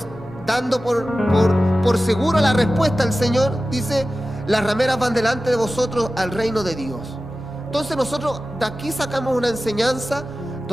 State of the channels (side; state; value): both; normal; correlation 0.95